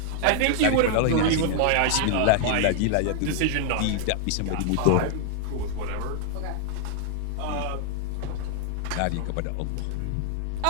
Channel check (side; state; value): both; different; correlation 0.00